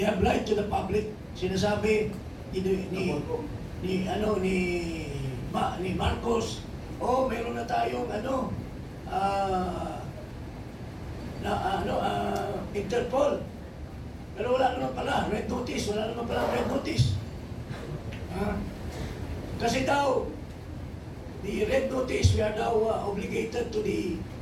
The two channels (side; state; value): both; identical; correlation 1.00